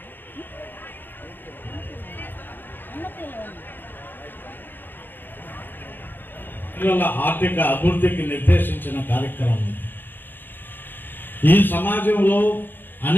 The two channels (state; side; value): late; right; 0.093 ms